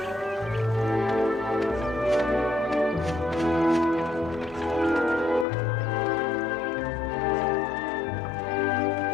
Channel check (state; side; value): drops out; right; at 5.5 s